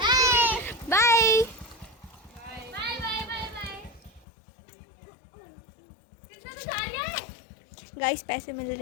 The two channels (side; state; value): right; drops out; at 4.2 s